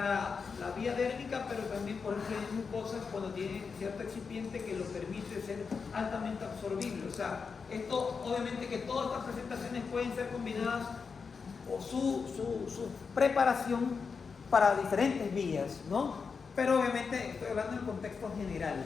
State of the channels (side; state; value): right; quieter; 5.4 dB